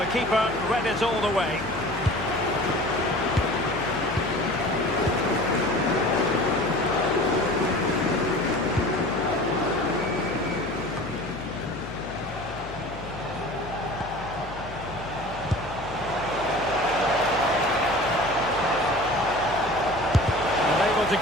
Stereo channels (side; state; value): left; noise; hum, 15 dB below the sound